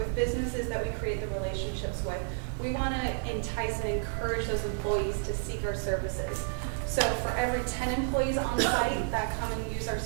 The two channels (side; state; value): left; silent; digital silence